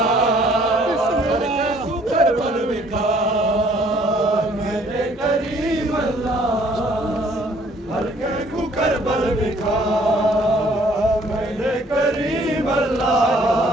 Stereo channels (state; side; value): normal; both; correlation 0.60